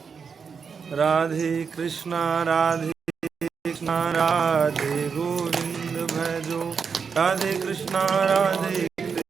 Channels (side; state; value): left; quieter; 5.9 dB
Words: राधे कृष्णा राधे कृष्णा राधे गोविंद भजो, राधे कृष्णा राधे